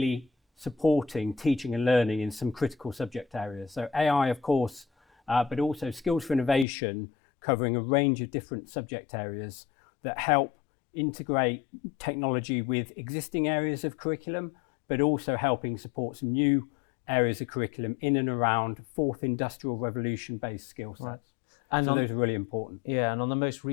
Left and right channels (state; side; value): drops out; right; at 6.7 s